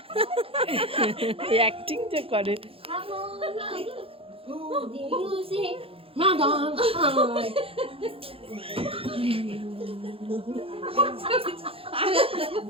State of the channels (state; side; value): late; left; 0.27 ms